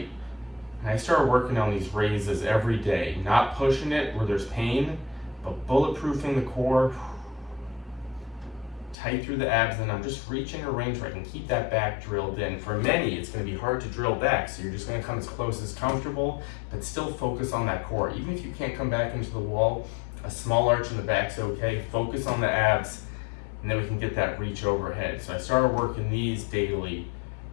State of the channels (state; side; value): drops out; right; at 9.0 s